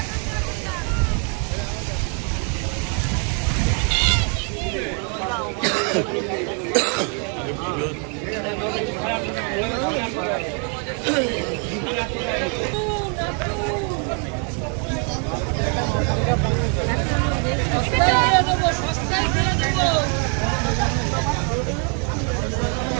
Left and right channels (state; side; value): quieter; left; 39.7 dB